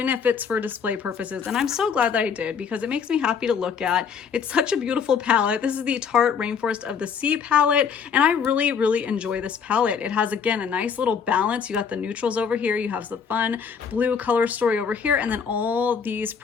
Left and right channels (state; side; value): quieter; right; 6.6 dB